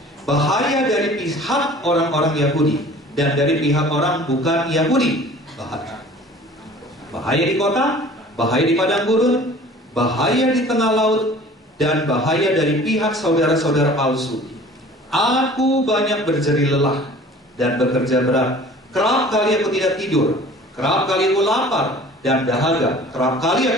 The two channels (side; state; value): both; normal; correlation 0.47